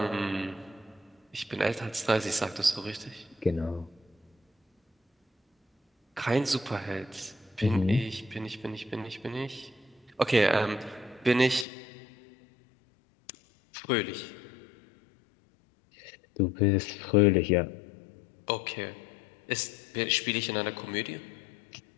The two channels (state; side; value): drops out; right; at 11.7 s